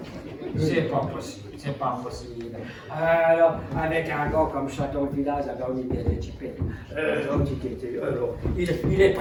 C'est pas possible. Alors, avec un gars comme ça dans le village, on est bien équipé. Il est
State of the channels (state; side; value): identical; both; correlation 1.00